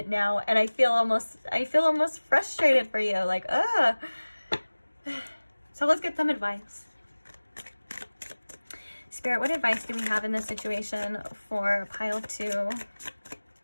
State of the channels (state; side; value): inverted; both; correlation -1.00